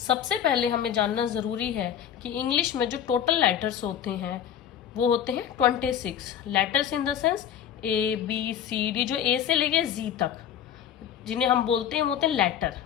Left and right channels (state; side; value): quieter; right; 9.5 dB